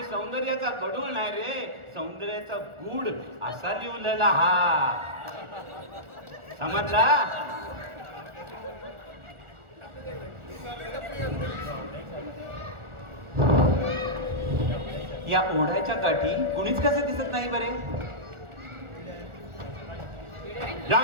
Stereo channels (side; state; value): left; late; 1.4 ms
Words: सौंदर्याचा गडूळ नाही रे, सौंदर्याचा गूढ असा लिवलेला हा, समजला? या ओढ्याच्या काठी कुणीच कसं दिसत नाही बरे. या